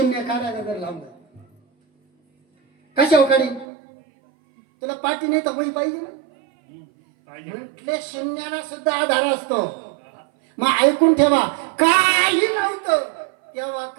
काढायला जर लावलं कशा काढी? तुला पाठी नाही तर बळी पाहिजे ना. म्हटले शून्याला सुद्धा आधार असतो. मग ऐकून ठेवा, काही नव्हतं तेव्हा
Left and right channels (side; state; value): left; drops out; at 3.7 s